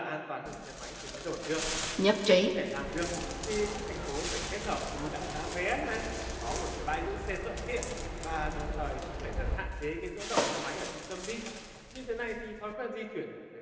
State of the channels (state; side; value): identical; both; correlation 1.00